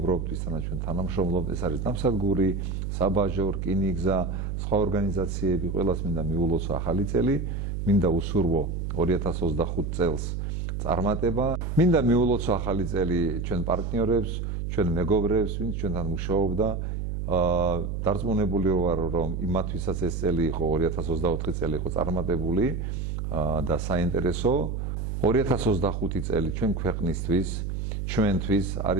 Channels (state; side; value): noise; right; hum, 3 dB below the sound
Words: ვისთანაც ჩვენ თანამშრომლობთ, ეს არის ნავსადგური, საბაჟო, რკინიგზა, სხვა ორგანიზაციები, ყველას მინდა მიულოცო ახალი წელი, მინდა უსურვო 2025 წელს წარმატება, მინდა მიულოცო ახალი წელი ჩვენ პარტნიორებს, ჩვენ მეგობრებს, ვინც ჩვენთან მუშაობდა, დარწმუნებული ვარ, რომ იმათვისაც ეს წელი იყო 2024 წელი იყო წარმატებული და საინტერესო. 2025 წელი ჩვენ ქვეყნისთვის, ჩვენთვის